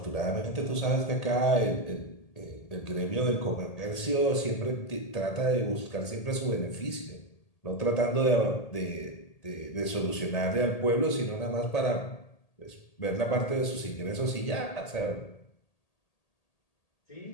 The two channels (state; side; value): late; right; 1.8 ms